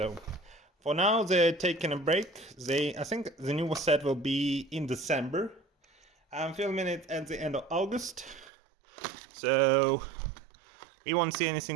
for now they're taking a break. I think the new set will be in December. I'm filming it at the end of August, so we won't see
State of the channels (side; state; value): left; drops out; at 8.5 s